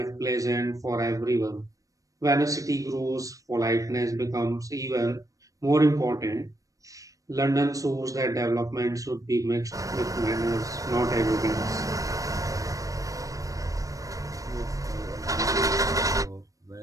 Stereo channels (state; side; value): late; left; 0.16 ms